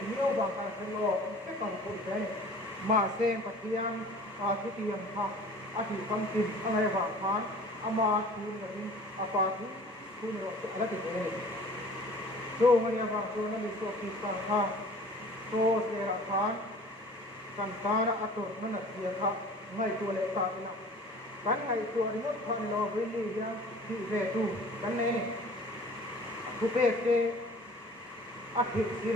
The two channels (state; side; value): normal; both; correlation 0.46